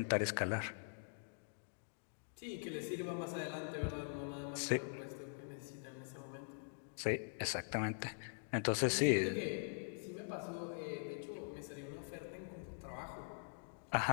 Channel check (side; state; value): right; silent; digital silence